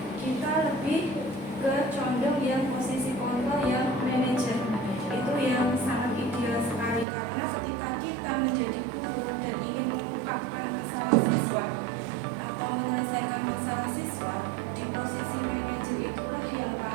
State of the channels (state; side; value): drops out; left; at 7.1 s